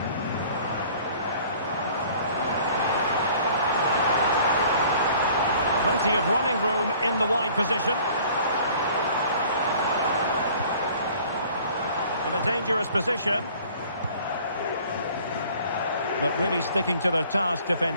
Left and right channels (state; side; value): inverted; both; correlation -0.52